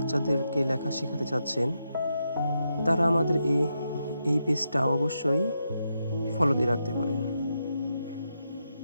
লেখা শেখাতে চাচ্ছেন, তারা আমাদের এই পেজটা অবশ্যই ফলো দিয়ে রাখতে পারেন।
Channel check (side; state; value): both; inverted; correlation -0.84